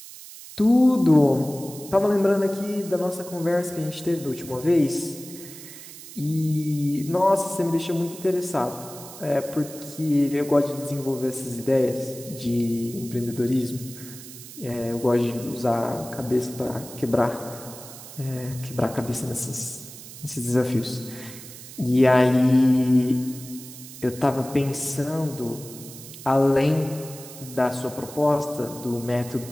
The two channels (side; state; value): right; noise; hiss, 15 dB below the sound